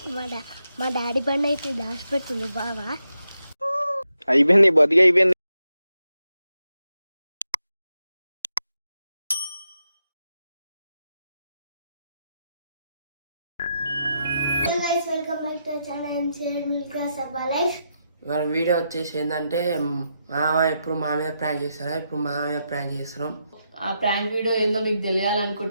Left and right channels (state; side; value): inverted; both; correlation -0.83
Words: మా డాడీ బండి అయితే దాచిపెడుతుంది బావా. అయిపోయింది, బతికి అయిపోయింది. వెల్కమ్ బ్యాక్ టు ఛానల్ మిల్కా సబ్బా లైఫ్. ఇవాళ వీడియో వచ్చేసి ఏంటంటే మామ ఎప్పుడు మా మీద ప్రాంక్ చేస్తారా, ఇప్పుడు మా మీద ప్రాంక్ చేస్తున్నాం. ఆ ప్రాంక్ వీడియో ఏందో మీకు